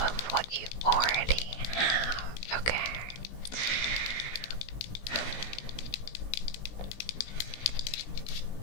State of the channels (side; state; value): right; late; 17 ms